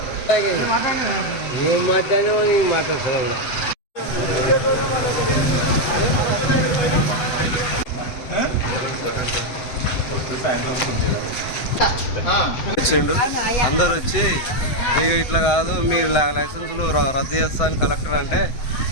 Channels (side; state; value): right; late; 7.8 ms